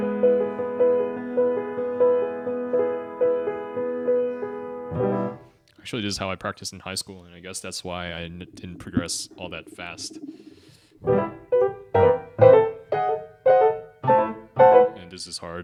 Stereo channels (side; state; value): both; identical; correlation 1.00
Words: Actually, this is how I practiced in high school, and I guess that's why I didn't progress all that fast. And this is